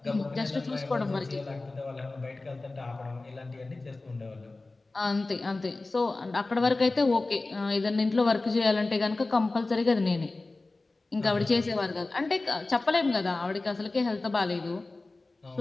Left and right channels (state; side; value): quieter; right; 3.2 dB